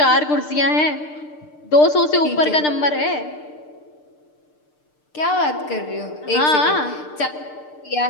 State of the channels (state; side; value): late; right; 6.7 ms